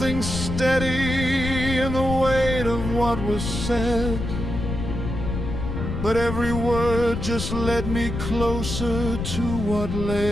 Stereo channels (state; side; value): noise; left; rumble, 4 dB below the sound